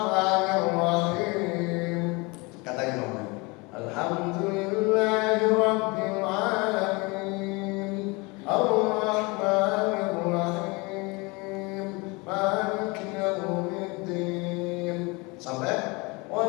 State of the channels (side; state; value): right; quieter; 26.8 dB